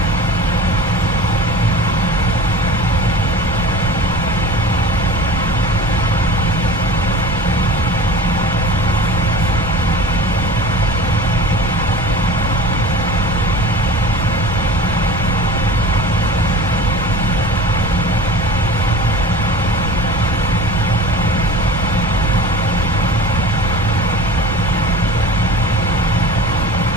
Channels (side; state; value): both; normal; correlation 0.37